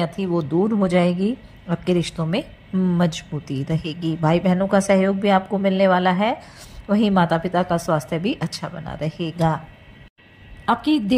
थी वो दूर हो जाएगी। आपके रिश्तों में मजबूती रहेगी। भाई बहनों का सहयोग भी आपको मिलने वाला है। वहीं माता पिता का स्वास्थ्य भी अच्छा बना रहेगा। आपकी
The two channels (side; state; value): both; identical; correlation 1.00